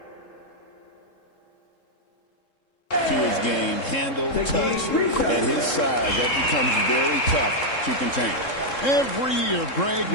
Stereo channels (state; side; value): late; right; 3.7 ms